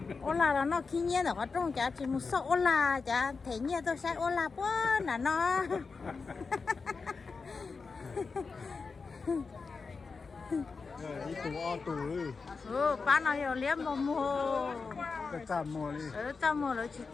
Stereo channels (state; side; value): quieter; right; 4.7 dB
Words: ôn là nó khi nhiên ở trong chả chỉ một số ôn là chả thấy nhiên tôi sẽ ôn là quá là nó đi tù bán nó nhiều liếm mà mua cái trăm mua đi trăm mua rồi chỉ